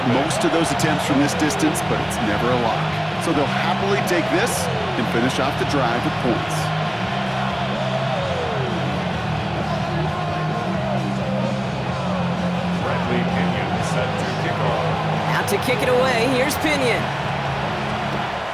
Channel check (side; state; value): right; noise; rumble, 26 dB below the sound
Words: most of those attempts from this distance, but it's never a lock. So they'll happily take this and finish off the drive with points. To kick it away, here's Pinion.